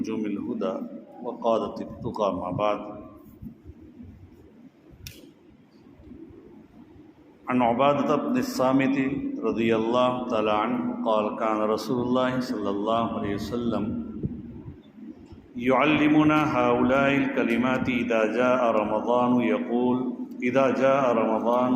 الهدى وقادة التقى ما بعد. عن عبادة بن الصامت رضي الله تعالى عنه قال كان رسول الله صلى الله عليه وسلم يعلمنا هؤلاء الكلمات إذا جاء رمضان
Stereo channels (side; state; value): both; identical; correlation 1.00